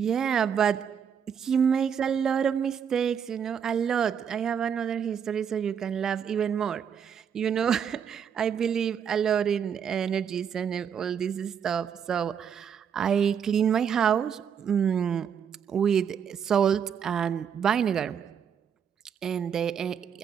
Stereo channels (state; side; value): quieter; left; 7.7 dB